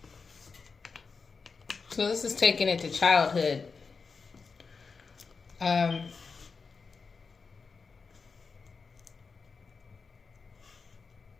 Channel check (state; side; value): quieter; right; 4.9 dB